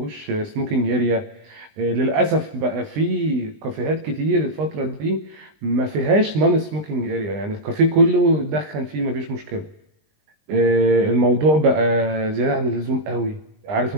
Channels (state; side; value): late; left; 20 ms